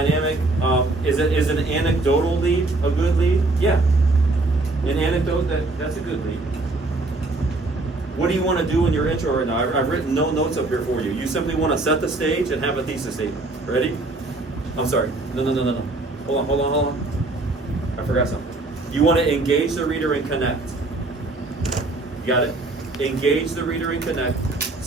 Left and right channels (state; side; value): quieter; left; 3.1 dB